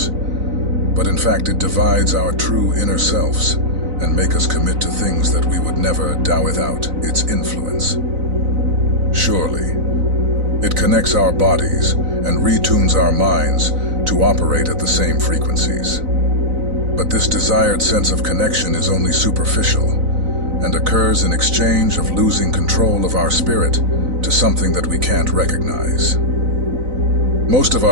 But in fact, it divides our true inner selves and make us commit to things that we would never do without its influence. Surely, it connects our bodies and retunes our minds to operate at the same frequencies. But this desired sense of connection is only superficial and occurs in exchange of losing control of our spirit to something that we can't recognize. Most of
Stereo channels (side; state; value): left; late; 4.0 ms